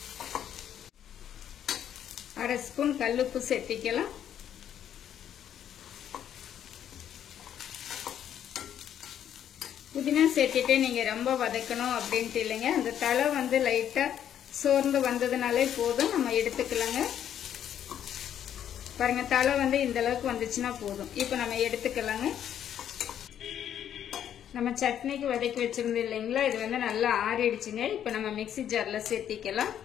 அரை ஸ்பூன் கல்லுப்பு சேர்த்திக்கலாம். புதினா சேர்த்திட்டு நீங்க ரொம்ப வதக்கணும் அப்படின்ட்டு இல்லைங்க. அந்த தலை வந்து லைட்டா சோர்ந்து வந்ததுனாலே போதும், நம்ம எடுத்துக்கலாங்க. பாருங்க தலை வந்து இந்த அளவுக்கு வந்துச்சுன்னா போதும். இப்போ நம்ம எடுத்துக்கலாங்க. நம்ம சட்னிக்கு வதக்கி வச்சிருந்தோம் இல்லைங்களா, இது வந்து நல்லா ஆறிடுச்சுங்க. இப்போ நம்ம மிக்ஸி ஜார்ல சேர்த்திக்கலாம்.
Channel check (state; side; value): quieter; right; 9.9 dB